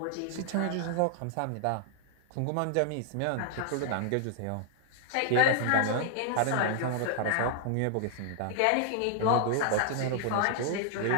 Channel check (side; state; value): both; different; correlation 0.00